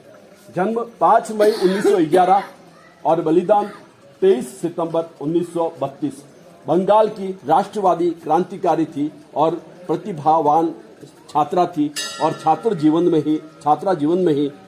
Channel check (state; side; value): identical; both; correlation 1.00